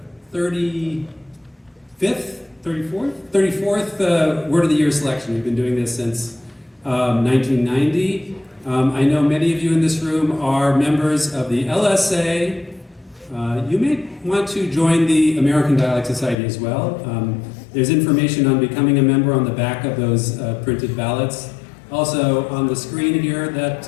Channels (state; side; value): drops out; right; at 16.4 s